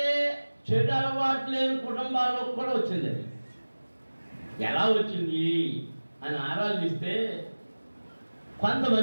చెడు అలవాటు లేని కుటుంబాల్లో కూడా వచ్చింది. అది ఎలా వచ్చింది అని ఆరాధిస్తే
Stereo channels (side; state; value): both; inverted; correlation -1.00